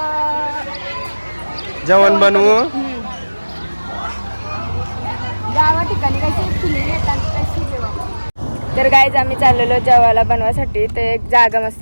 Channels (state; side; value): inverted; both; correlation -1.00